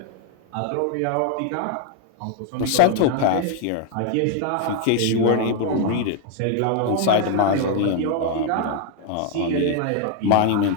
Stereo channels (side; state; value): both; different; correlation 0.00